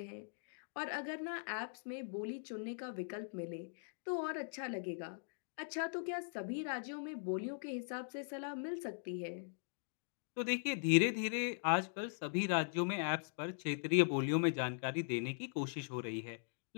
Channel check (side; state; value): right; silent; digital silence